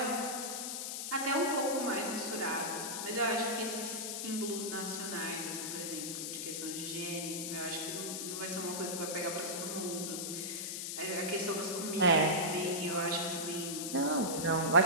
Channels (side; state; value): left; noise; hiss, 4 dB below the sound